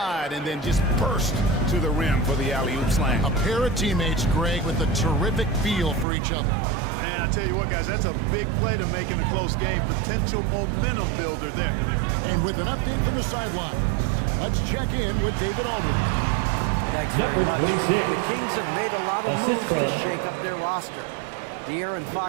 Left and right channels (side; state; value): left; drops out; at 6.1 s